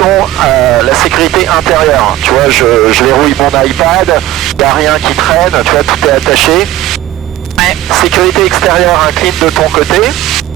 la sécurité intérieure. Tu vois, je verrouille mon iPad, il n'y a rien qui traîne, tu vois, tout est attaché. Ouais. Sécurité extérieure, incline de ton côté.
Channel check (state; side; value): quieter; left; 14.2 dB